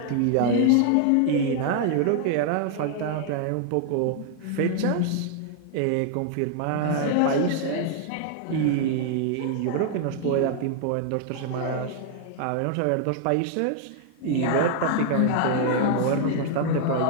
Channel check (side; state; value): both; different; correlation 0.00